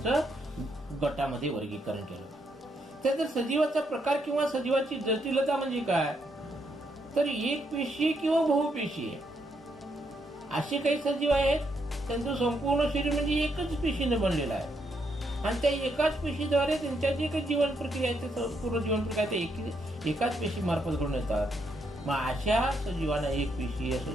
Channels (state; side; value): normal; both; correlation 0.77